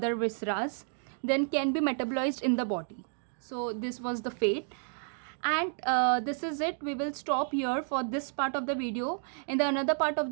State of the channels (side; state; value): left; silent; 57 dB below the other